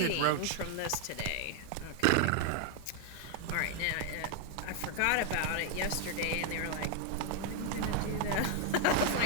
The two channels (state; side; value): different; both; correlation 0.00